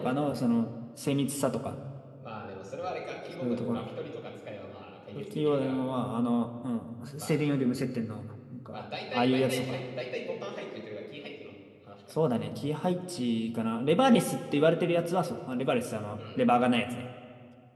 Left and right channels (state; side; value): identical; both; correlation 1.00